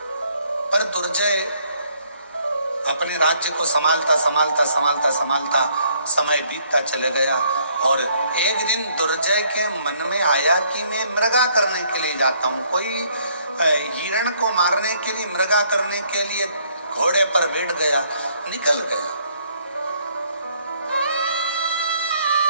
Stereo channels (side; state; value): both; inverted; correlation -0.66